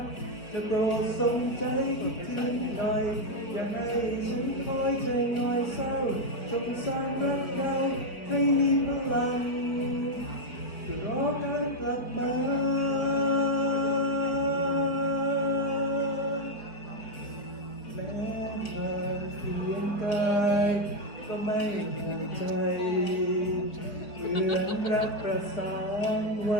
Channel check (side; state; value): right; late; 4.7 ms